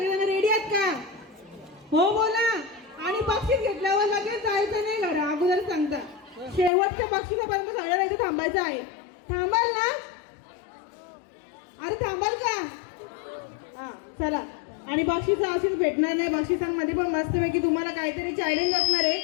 रेडी आहात का. हो बोला. आणि बक्षीस घेतल्यावर लगेच जायचं नाही घरा, अगोदर सांगता. शेवटच्या बक्षिसापर्यंत सगळ्यांना इथे थांबायचं आहे. थांबाल ना? अरे थांबाल का? हा चला. आणि बक्षीस अशीच भेटणार नाही. बक्षिसांमध्ये पण मस्तपैकी तुम्हाला काहीतरी चॅलेंज असणार आहे,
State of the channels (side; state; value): right; drops out; at 6.7 s